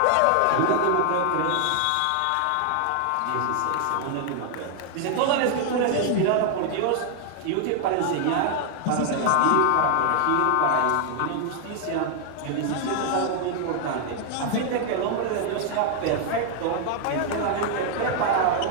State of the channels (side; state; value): both; different; correlation 0.00